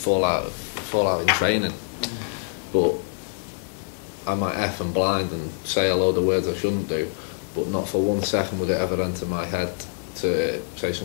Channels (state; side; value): silent; right; digital silence